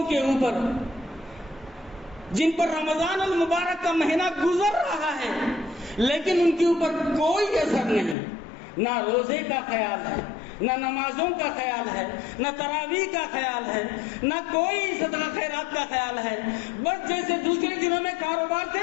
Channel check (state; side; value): drops out; right; at 8.2 s